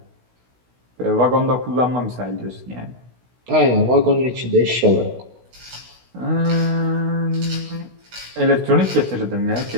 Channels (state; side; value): late; left; 16 ms